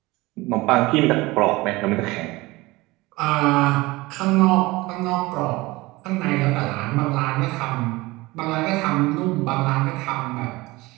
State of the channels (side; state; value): left; quieter; 21.2 dB